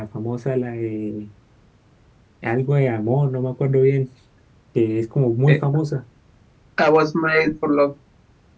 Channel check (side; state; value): both; identical; correlation 1.00